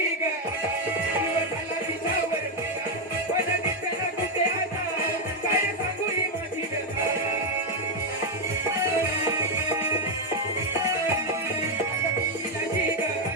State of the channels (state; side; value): normal; both; correlation 0.03